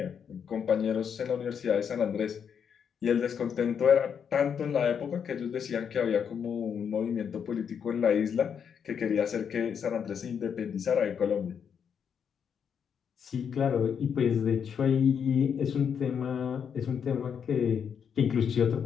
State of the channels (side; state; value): right; quieter; 7.4 dB